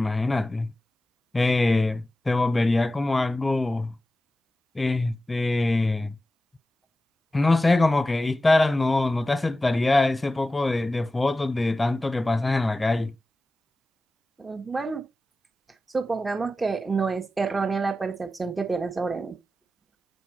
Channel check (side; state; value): both; normal; correlation 0.95